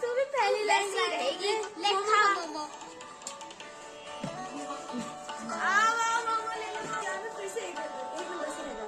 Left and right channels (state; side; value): identical; both; correlation 1.00